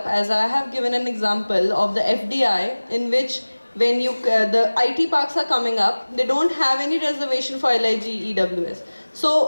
As I have given an example of the FDI, in which when the IT parks are coming up, they don't have any reservation for LIG EWS.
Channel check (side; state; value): both; inverted; correlation -1.00